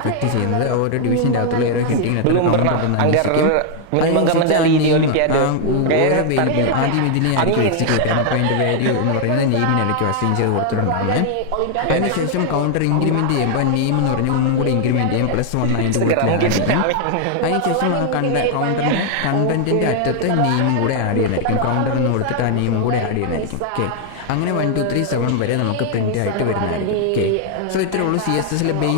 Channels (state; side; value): different; both; correlation 0.00